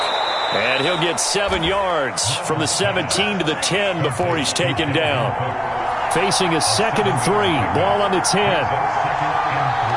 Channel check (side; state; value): both; identical; correlation 1.00